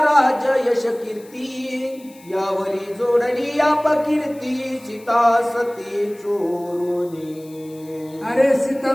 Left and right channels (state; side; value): noise; left; hiss, 25 dB below the sound